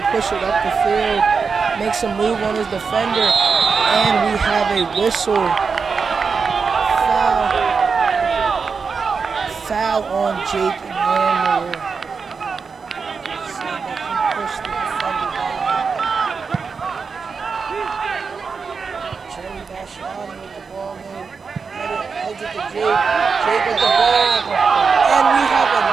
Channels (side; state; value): left; quieter; 5.3 dB